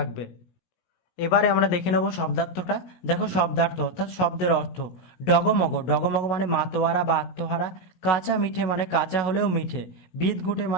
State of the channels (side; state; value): right; late; 17 ms